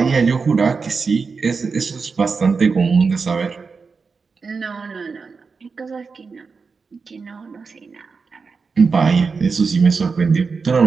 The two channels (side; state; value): left; quieter; 4.9 dB